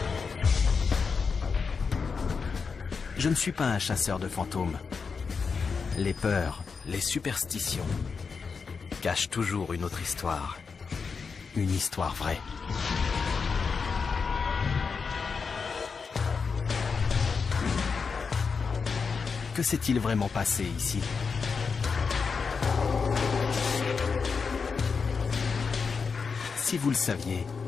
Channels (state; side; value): quieter; right; 5.3 dB